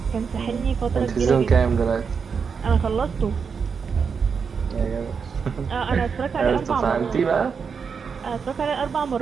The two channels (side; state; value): left; quieter; 5.9 dB